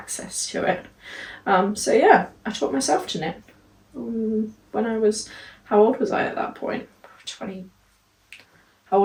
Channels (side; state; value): both; identical; correlation 1.00